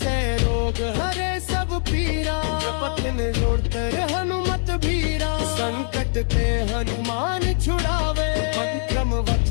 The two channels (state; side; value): silent; right; 63 dB below the other